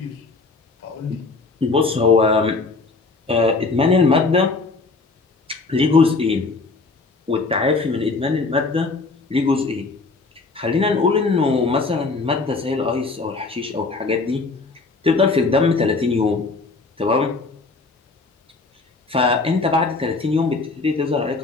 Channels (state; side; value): quieter; right; 3.9 dB